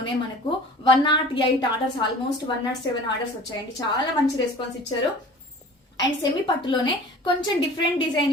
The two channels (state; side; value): normal; both; correlation 0.43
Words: మనకు 108 ఆర్డర్స్, ఆల్మోస్ట్ 107 ఆర్డర్స్ వచ్చాయండి. చాలా మంచి రెస్పాన్స్ ఇచ్చారు. అండ్ సెమీ పట్టులోనే కొంచెం డిఫరెంట్ డిజైన్